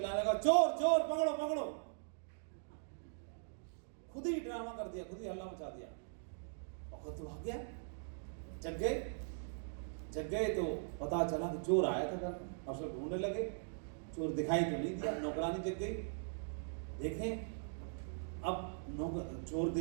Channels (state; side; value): silent; left; digital silence